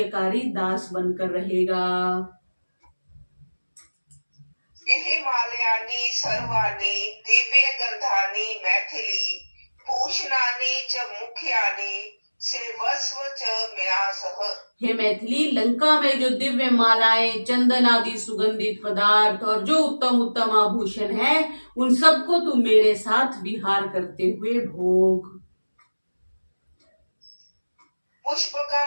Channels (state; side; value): inverted; both; correlation -1.00